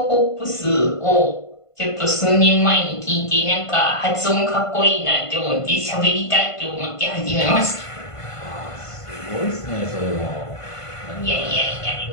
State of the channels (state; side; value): late; right; 1.5 ms